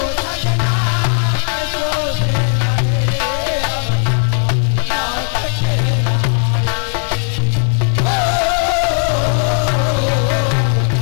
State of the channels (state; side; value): silent; right; 60 dB below the other